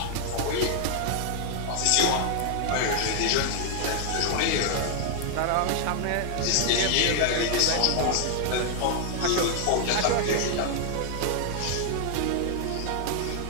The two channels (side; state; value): both; different; correlation 0.00